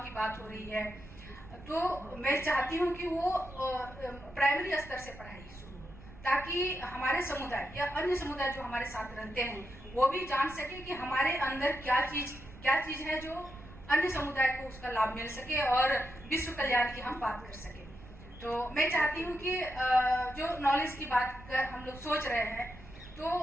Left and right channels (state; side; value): noise; right; rumble, 18 dB below the sound